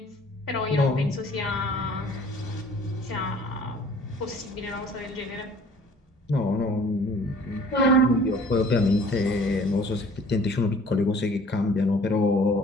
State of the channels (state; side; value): normal; both; correlation 0.52